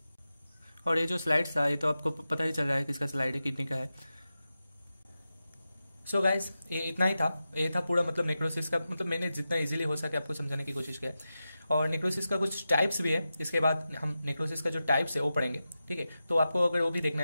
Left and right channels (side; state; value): both; inverted; correlation -0.92